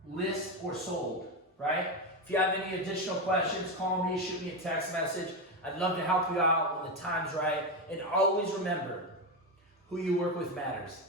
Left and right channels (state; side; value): normal; both; correlation 0.12